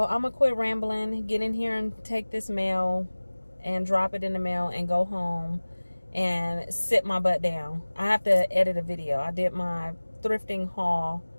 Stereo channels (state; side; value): inverted; both; correlation -1.00